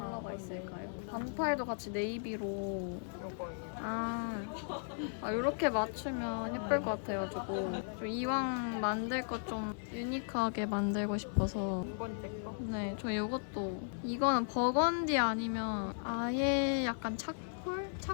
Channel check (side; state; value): right; silent; 54 dB below the other